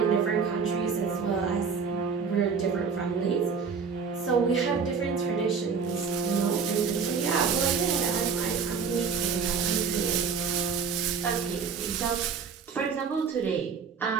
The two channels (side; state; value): left; quieter; 5.8 dB